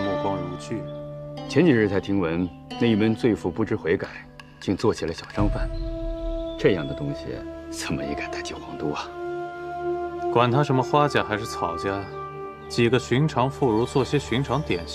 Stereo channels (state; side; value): identical; both; correlation 1.00